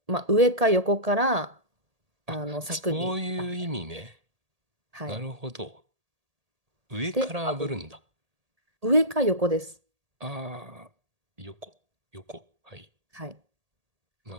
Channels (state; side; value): late; left; 1.8 ms